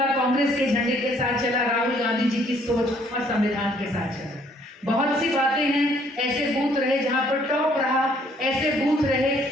कांग्रेस के झंडे के साथ चला, राहुल गांधी जी की सोच और संविधान के साथ चला। बहुत सी बातें हैं, ऐसे बूथ रहे जहाँ पर टॉप रहा, ऐसे बूथ रहे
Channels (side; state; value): both; normal; correlation 0.63